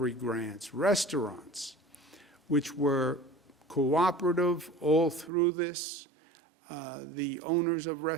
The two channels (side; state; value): left; drops out; at 5.3 s